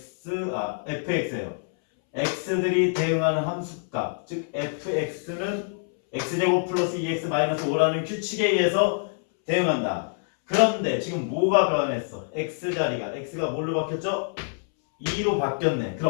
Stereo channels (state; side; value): silent; right; 61 dB below the other